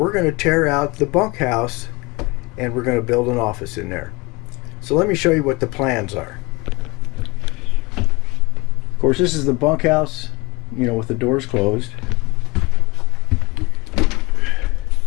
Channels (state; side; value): quieter; right; 24.6 dB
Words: going to tear out the bunkhouse and we're going to build an office in there. So let me show you what the plans are. Of course, this is the bunkhouse, you know, with the doors closed.